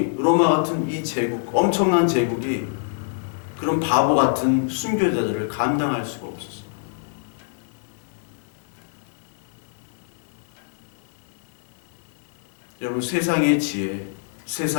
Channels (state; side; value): silent; right; digital silence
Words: 로마 같은 이 제국, 엄청난 제국이 그런 바보 같은 순교자들을 감당할 수가 없었어요. 여러분, 세상의 지혜,